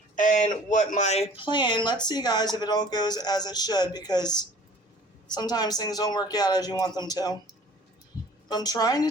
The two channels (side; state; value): both; normal; correlation 0.49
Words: what my plan, let's see guys if it all goes as it should, because sometimes things don't work out as you want them to. But I'm trying to